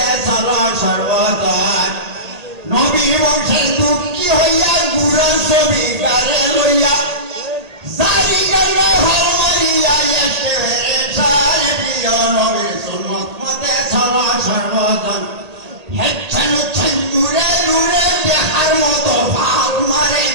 চলো সর্বজন নবী বংশের দুঃখী হইয়া গুড়ার ছবি কারে লইয়া জারি গাইলে হল মারিয়া এসে সার প্রিয় নবীর সুন্নত মতে চলো সর্বজন হেচ্ছেন হচ্ছেন দূরে দূরে দেখার মতো ভাল মারে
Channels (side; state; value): left; late; 1.8 ms